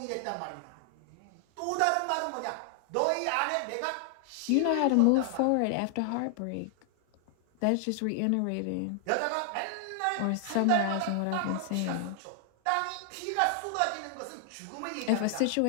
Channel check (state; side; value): different; both; correlation 0.00